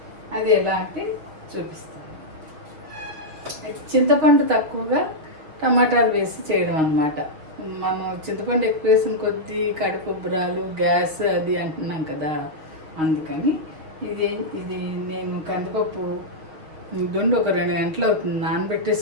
అది ఎలా అంటే చూపిస్తాను. అయితే చింతపండు తక్కువగా టమాటాలు వేసి చేయడం అన్నమాట. మనం చింతపండు ఎక్కువ వేసిన కొద్దీ కడుపు ఉబ్బరాలు, గ్యాస్ అది అంటున్నాం కదా, అందుకని ఇది నేను కందిపప్పు దొండి ఒక 2 గంటలు అవుతుంది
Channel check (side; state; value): left; late; 6.4 ms